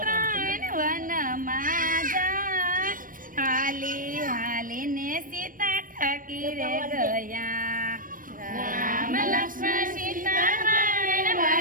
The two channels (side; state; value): left; late; 0.40 ms